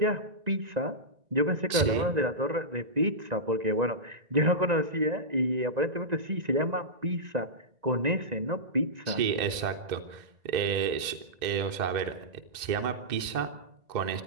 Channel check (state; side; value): late; left; 1.9 ms